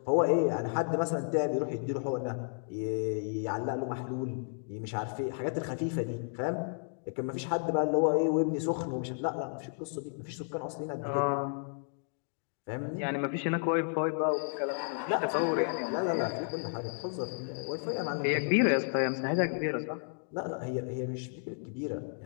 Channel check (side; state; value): right; silent; 56 dB below the other